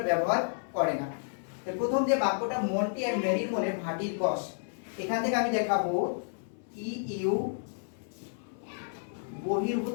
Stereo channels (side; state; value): right; silent; 57 dB below the other